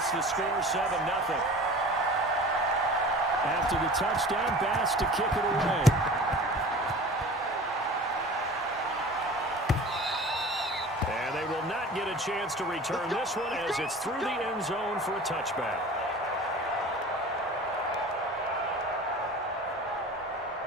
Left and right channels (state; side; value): normal; both; correlation 0.40